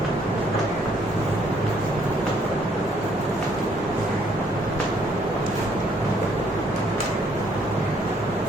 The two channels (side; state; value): both; normal; correlation 0.66